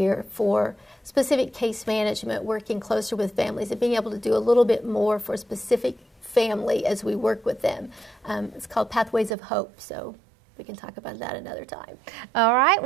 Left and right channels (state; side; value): drops out; left; at 9.3 s